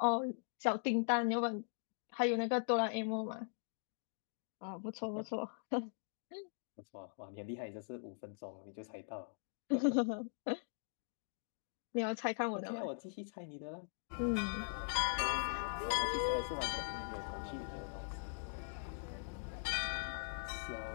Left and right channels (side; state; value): right; silent; digital silence